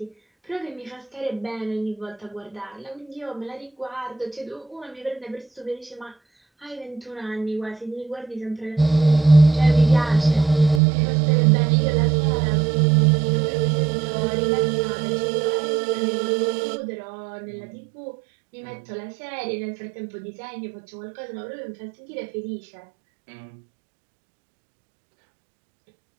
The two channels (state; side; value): drops out; left; at 10.8 s